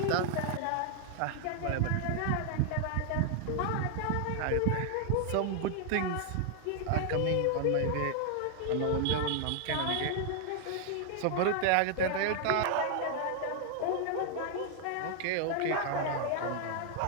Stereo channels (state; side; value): different; both; correlation 0.00